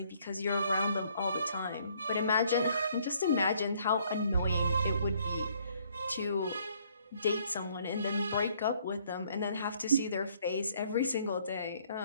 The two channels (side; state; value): both; inverted; correlation -0.64